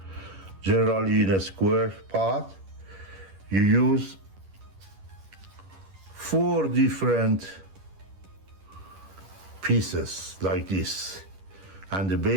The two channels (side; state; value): left; late; 10 ms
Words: Generally in a square pot, you use 4 different pieces like this. And the